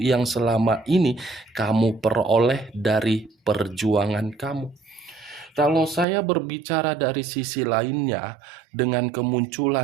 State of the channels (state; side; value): drops out; left; at 6.1 s